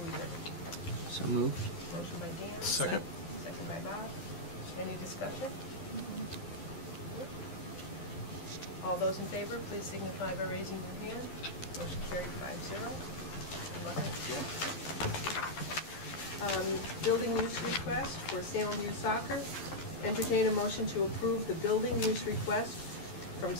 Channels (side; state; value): right; late; 12 ms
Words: year. So moved. Motion by Dan. Second. Second by Bob. Any discussion? All those in favor, please signify by raising your hand. Motion carried 5-0. Building use request for Salem Youth Soccer. Entertain a motion to approve the building use request from